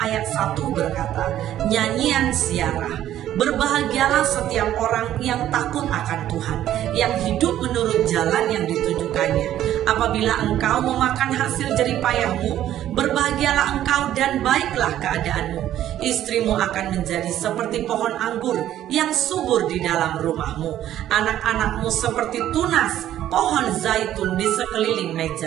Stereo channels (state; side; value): quieter; left; 12.1 dB